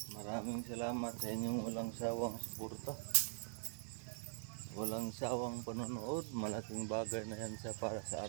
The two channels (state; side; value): silent; left; digital silence